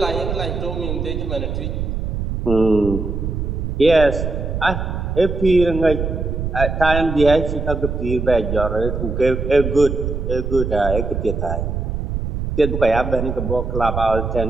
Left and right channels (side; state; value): right; noise; rumble, 3 dB below the sound